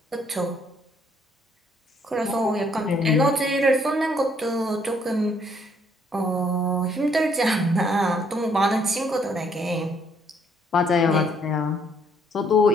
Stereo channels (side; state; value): both; normal; correlation 0.67